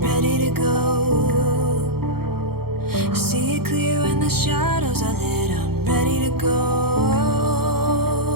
to go. See it clear when the shadows are lit, I'm ready to go.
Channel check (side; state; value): left; late; 0.95 ms